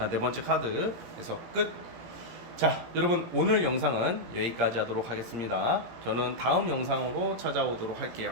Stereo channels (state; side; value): late; left; 17 ms